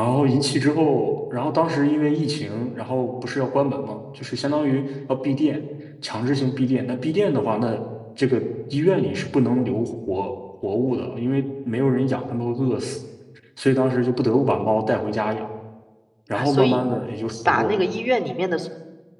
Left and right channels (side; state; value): both; identical; correlation 1.00